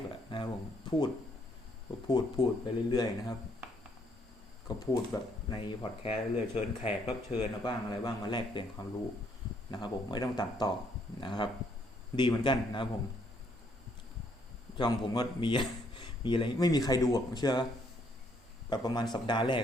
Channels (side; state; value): both; normal; correlation 0.69